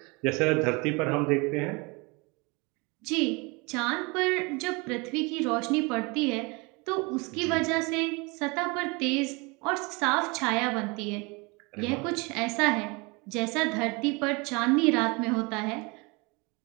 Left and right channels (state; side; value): quieter; left; 27.8 dB